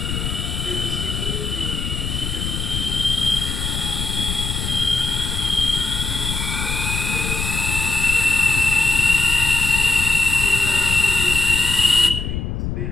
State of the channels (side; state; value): left; noise; rumble, 4 dB below the sound